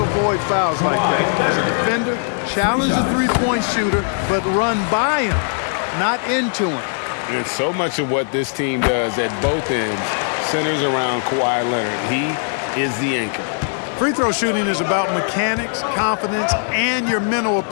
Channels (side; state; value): right; silent; digital silence